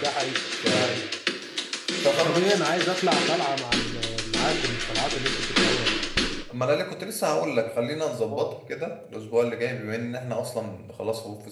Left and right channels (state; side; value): identical; both; correlation 1.00